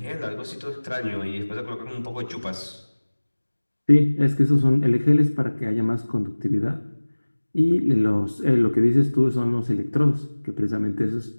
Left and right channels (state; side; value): inverted; both; correlation -1.00